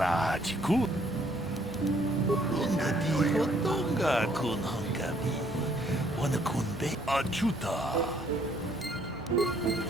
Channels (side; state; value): both; normal; correlation 0.65